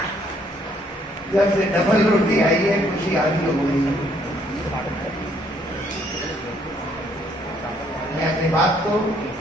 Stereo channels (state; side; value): normal; both; correlation 0.67